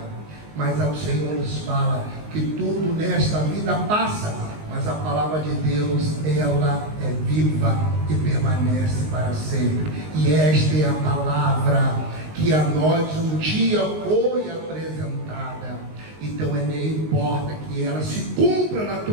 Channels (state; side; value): late; left; 19 ms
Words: Mas o Senhor nos fala que tudo nesta vida passa, mas a palavra de Deus, ela é viva e permanece para sempre. E esta é a palavra que a nós um dia foi apresentada. Então não importa que ela se cumpra na